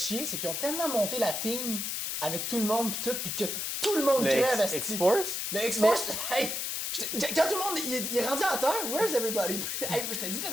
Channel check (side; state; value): left; noise; hiss, 2 dB below the sound